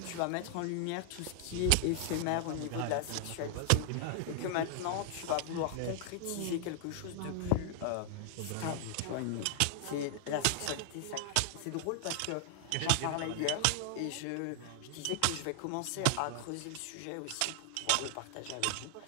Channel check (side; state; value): both; different; correlation 0.00